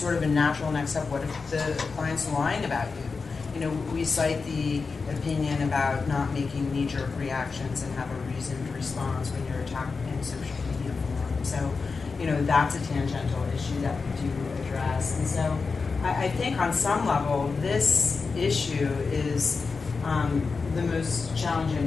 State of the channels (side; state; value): right; quieter; 4.6 dB